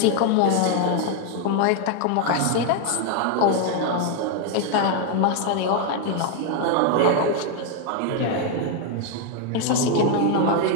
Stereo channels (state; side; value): different; both; correlation 0.01